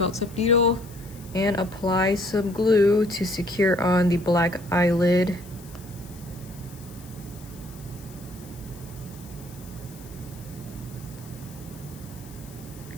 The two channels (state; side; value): noise; left; hiss, 21 dB below the sound